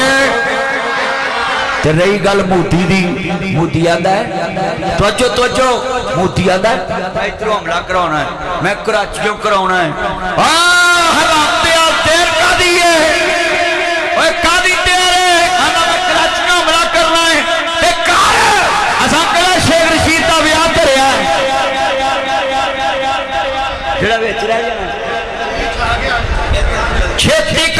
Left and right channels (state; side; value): identical; both; correlation 1.00